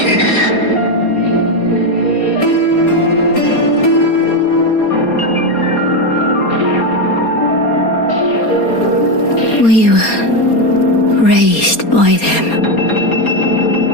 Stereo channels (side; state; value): right; late; 4.3 ms